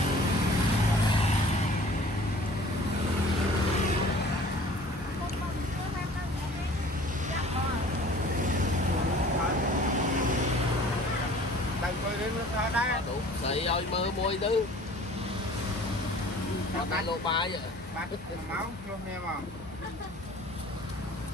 đừng coi đến nó đây đủ xây ơi mơ môi thứ còn tay lô ba vậy bắt máu luôn em à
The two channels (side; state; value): both; normal; correlation 0.48